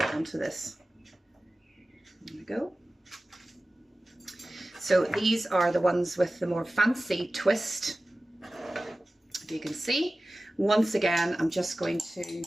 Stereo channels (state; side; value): normal; both; correlation 0.96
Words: onto this. There we go. So these are the ones with the more fancy twist. If you can see, once again, I'm just going to